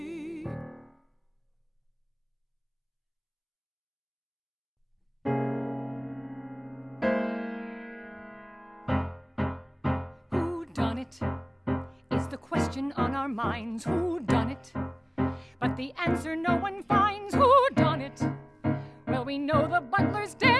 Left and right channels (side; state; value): both; identical; correlation 1.00